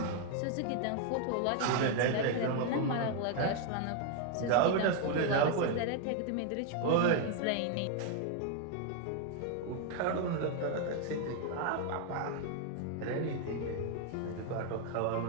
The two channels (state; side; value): different; both; correlation 0.00